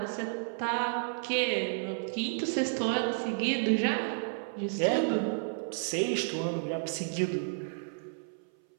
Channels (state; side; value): silent; left; 56 dB below the other